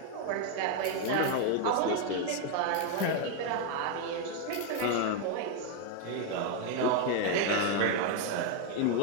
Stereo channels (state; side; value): different; both; correlation 0.01